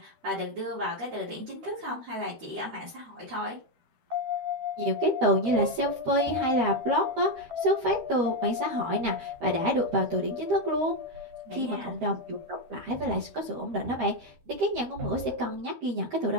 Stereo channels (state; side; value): late; left; 13 ms